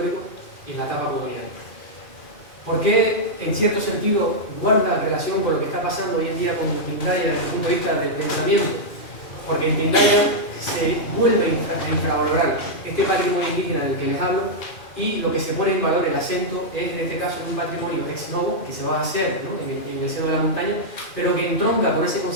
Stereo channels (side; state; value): right; late; 2.4 ms